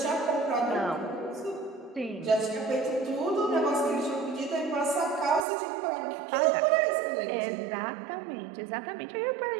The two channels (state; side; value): drops out; left; at 5.4 s